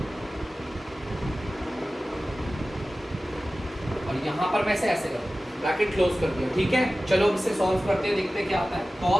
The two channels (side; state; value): both; normal; correlation 0.96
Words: और यहां पर मैं ऐसे करूं, ब्रैकेट क्लोज कर दिया। ठीक है, चलो इसे सॉल्व करते हैं, देखते हैं क्या आता है।